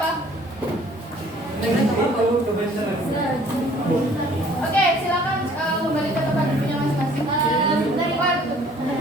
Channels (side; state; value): both; normal; correlation 0.55